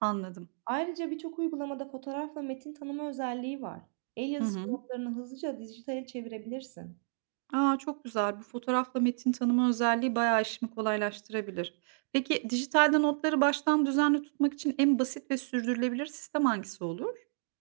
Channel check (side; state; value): left; silent; digital silence